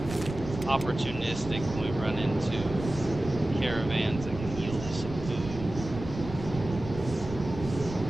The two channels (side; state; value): right; noise; rumble, 10 dB below the sound